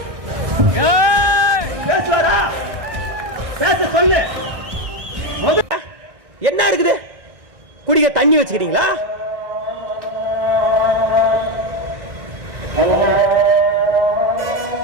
பேசுவாரா? பேச சொல்லு. என்ன இருக்குது? குடிக்க தண்ணி வச்சுக்கிறீங்களா?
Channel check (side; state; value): left; late; 1.6 ms